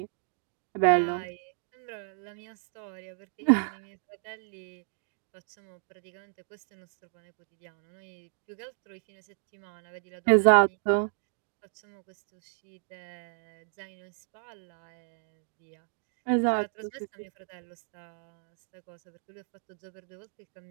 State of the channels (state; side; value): silent; left; digital silence